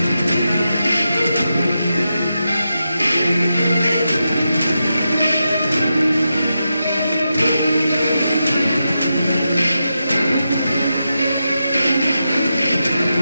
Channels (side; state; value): both; inverted; correlation -0.88